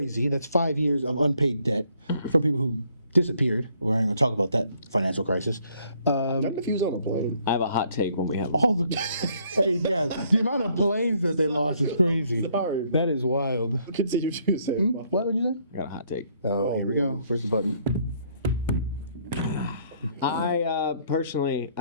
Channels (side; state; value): both; inverted; correlation -0.66